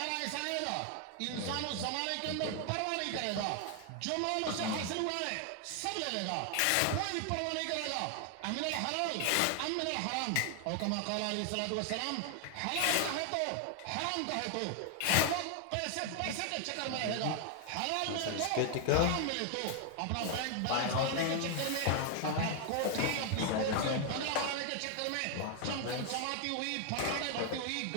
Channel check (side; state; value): both; different; correlation 0.00